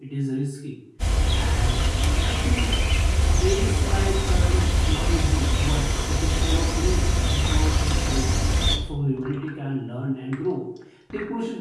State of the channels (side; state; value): both; identical; correlation 1.00